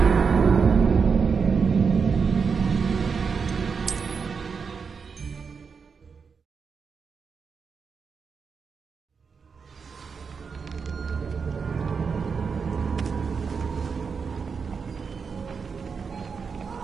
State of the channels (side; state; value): left; quieter; 5.7 dB